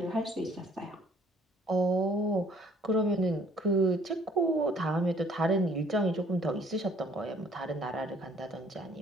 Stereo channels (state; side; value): normal; both; correlation 0.58